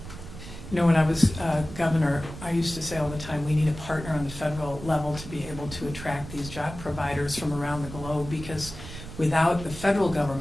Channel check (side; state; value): right; noise; rumble, 12 dB below the sound